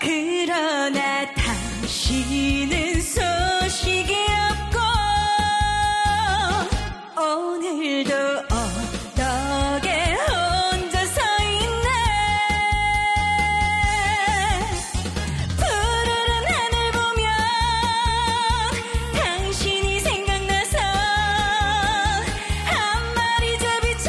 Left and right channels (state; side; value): identical; both; correlation 1.00